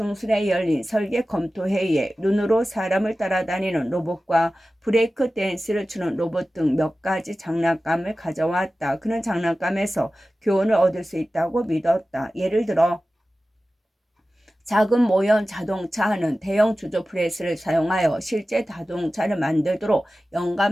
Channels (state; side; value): normal; both; correlation 0.95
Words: 열린 설계 검토 회의에 눈으로 사람을 따라다니는 로봇과 브레이크 댄스를 추는 로봇 등 몇 가지 장난감을 가져왔다. 그는 장난감에서 교훈을 얻을 수 있다고 믿었다. 예를 들어 작은 모형 자동차는 대형 주조 프레스를 사용하여 실제 자동차를 만들도록